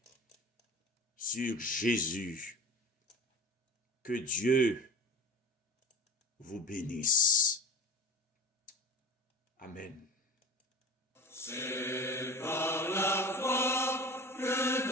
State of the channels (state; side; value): normal; both; correlation 0.35